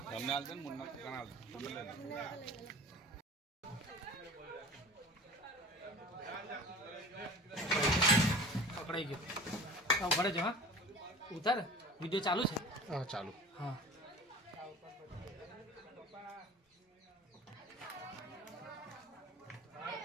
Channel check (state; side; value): normal; both; correlation 0.40